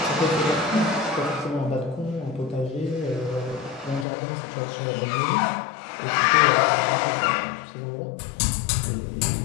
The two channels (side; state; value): right; drops out; at 4.0 s